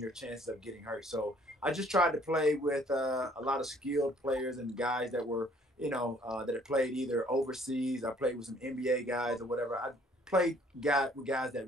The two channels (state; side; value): normal; both; correlation 0.60